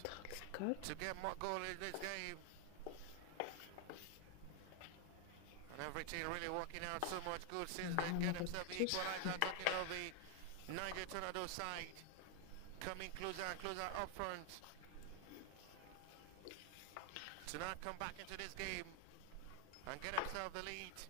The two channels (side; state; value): both; different; correlation 0.00